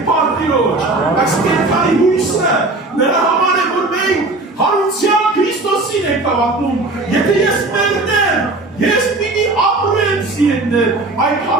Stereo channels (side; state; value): left; quieter; 3.1 dB